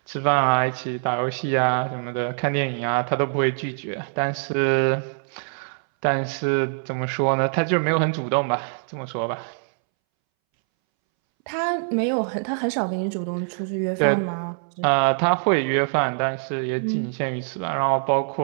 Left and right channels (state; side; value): silent; left; 63 dB below the other